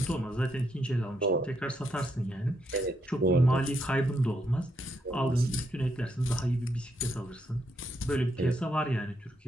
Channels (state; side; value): normal; both; correlation 0.78